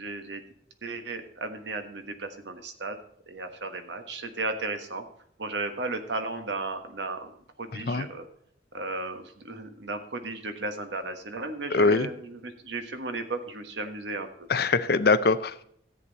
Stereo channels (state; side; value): normal; both; correlation 0.03